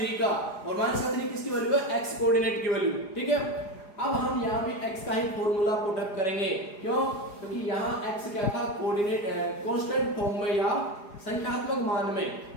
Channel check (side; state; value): right; late; 4.9 ms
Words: का, और -3 किसकी वैल्यू है? एक्स कोऑर्डिनेट की वैल्यू। ठीक है, अब हम यहाँ भी x का ही फॉर्मूला पुट अप करेंगे। क्यों? क्योंकि यहाँ x क्या था? कोऑर्डिनेट कांस्टेंट फॉर्म में या संख्यात्मक मान में।